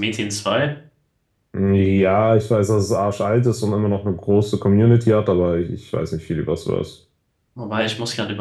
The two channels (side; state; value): both; identical; correlation 1.00